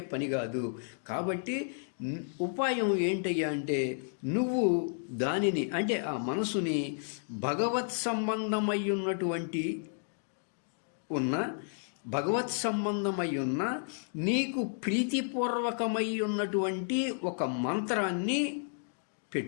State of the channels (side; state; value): right; silent; digital silence